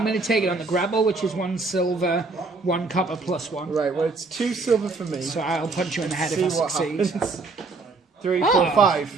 going to take it on the grapple, which is 1 silver, 1 copper plus 1. Right, well, it's 2 silver for me. So I'll punch you in the head See if I what succeed. happens. 3, 4,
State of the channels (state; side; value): quieter; left; 3.8 dB